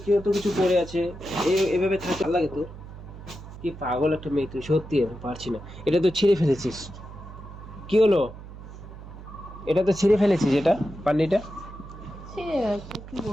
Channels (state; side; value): noise; right; hum, 14 dB below the sound